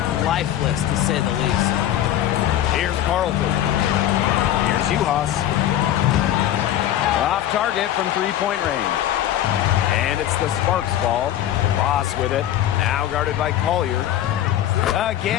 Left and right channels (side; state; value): right; quieter; 12.0 dB